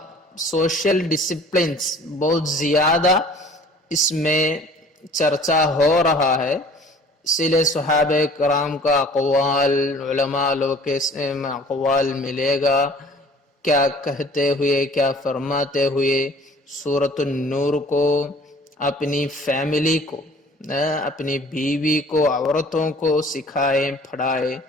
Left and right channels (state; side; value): normal; both; correlation 0.50